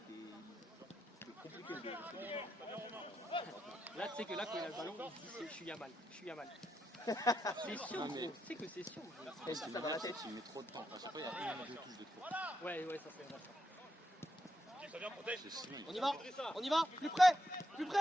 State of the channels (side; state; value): both; normal; correlation 0.82